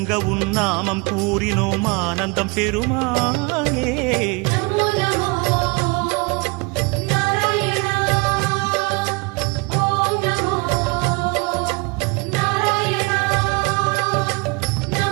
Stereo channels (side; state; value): left; quieter; 28.8 dB